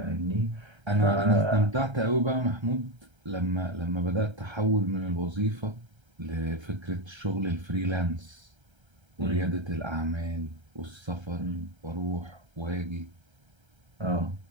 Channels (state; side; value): late; left; 1.3 ms